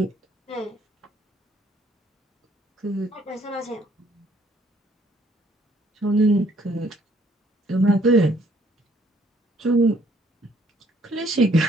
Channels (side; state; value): both; normal; correlation 0.64